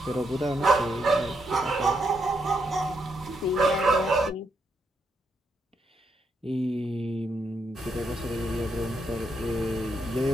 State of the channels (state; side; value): normal; both; correlation 0.79